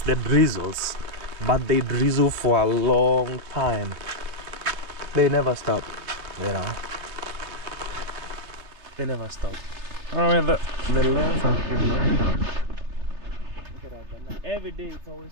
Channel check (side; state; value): left; late; 3.3 ms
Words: the drizzles, but they drizzle for a long time. They never stop, you know. They never stop. Oh, the lens has been going down. Look at that. Every day it's